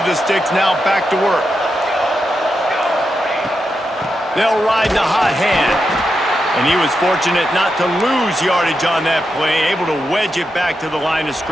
the sticks, now back to work. They'll ride the hot hand. And he was fortunate not to lose yardage on that play, able to wedge it back to the line of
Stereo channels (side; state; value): both; normal; correlation 0.86